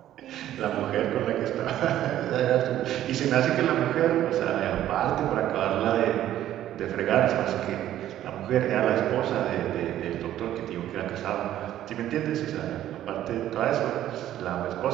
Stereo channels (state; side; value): quieter; left; 12.4 dB